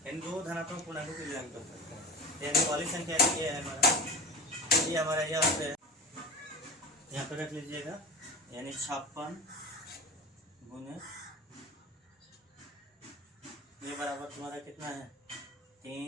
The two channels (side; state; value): both; normal; correlation 0.32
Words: इन 2 धनात्मक पूर्णांकों के लिए लागू कर सकते हैं। यानी वाली संख्या ये है हमारा यहाँ पे रख लीजिएगा, यानी 56 गुने ये बराबर तुम्हारा कितना है